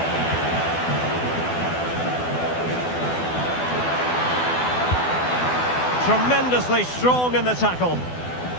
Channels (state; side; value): late; right; 12 ms